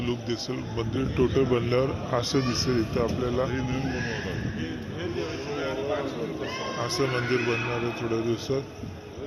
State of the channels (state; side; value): identical; both; correlation 1.00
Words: लुक दिसेल. मंदिर टोटल बनल्यावर असं दिसेल. इथं आपल्याला असं मंदिर बनणार आहे थोड्या दिवसात.